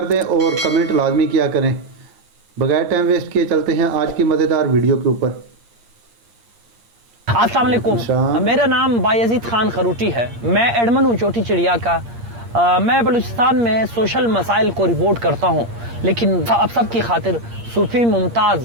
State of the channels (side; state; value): left; late; 8.6 ms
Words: दें और कमेंट लाजमी किया करें। बगैर टाइम वेस्ट किए चलते हैं आज की मज़ेदार वीडियो के ऊपर। अस्सलाम वालेकुम, मेरा नाम बायजीद खान खरूटी है। मैं एडमन हूँ छोटी चिड़िया का। मैं बलूचिस्तान में सोशल मसाइल को रिपोर्ट करता हूँ, लेकिन अब सब की खातिर सूफ़ी